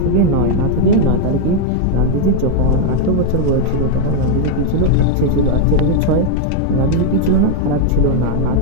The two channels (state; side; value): different; both; correlation 0.00